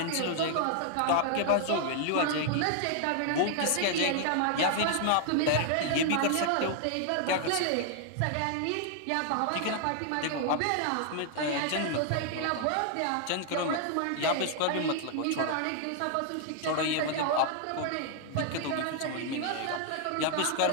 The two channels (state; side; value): different; both; correlation 0.00